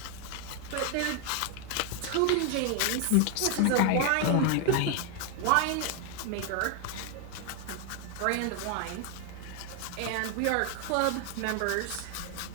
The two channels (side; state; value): both; different; correlation 0.01